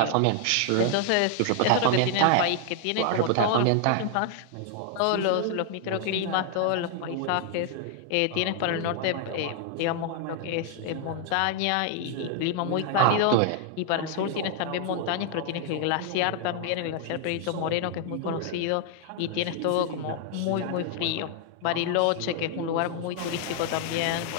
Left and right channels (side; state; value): both; different; correlation 0.00